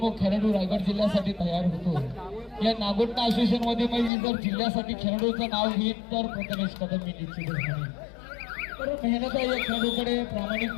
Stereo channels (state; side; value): drops out; right; at 4.1 s